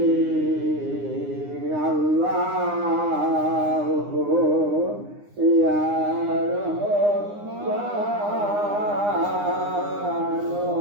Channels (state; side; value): late; left; 9.8 ms